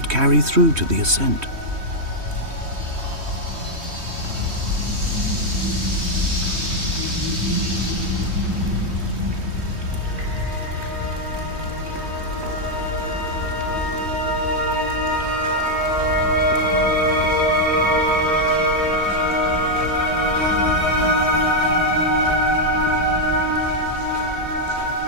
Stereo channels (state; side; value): late; left; 3.2 ms